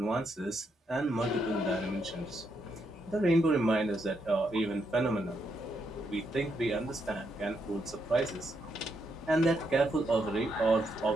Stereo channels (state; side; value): normal; both; correlation 0.79